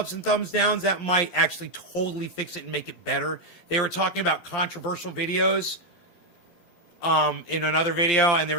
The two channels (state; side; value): late; right; 12 ms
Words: and thumbs downs, that might actually totally fix it and make it better. They were talking about controversial videos in another video, and they